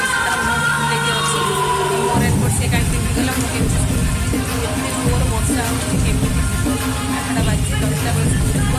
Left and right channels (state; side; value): identical; both; correlation 1.00